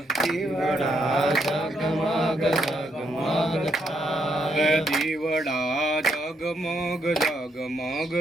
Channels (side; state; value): both; normal; correlation 0.76